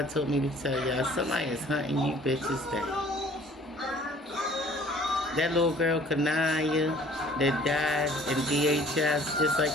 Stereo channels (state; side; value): normal; both; correlation 0.53